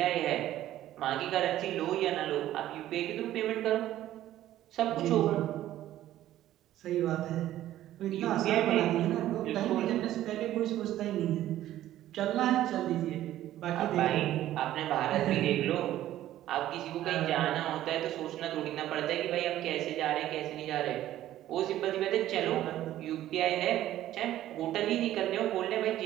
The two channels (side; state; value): left; quieter; 13.4 dB